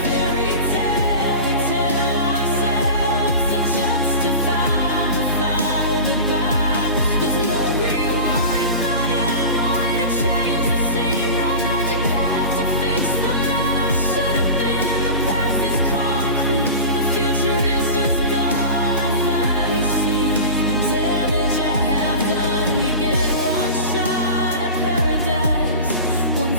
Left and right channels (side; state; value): both; inverted; correlation -0.32